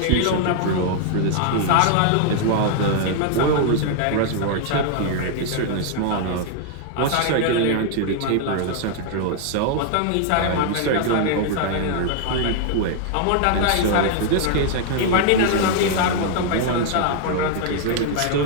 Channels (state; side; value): different; both; correlation 0.00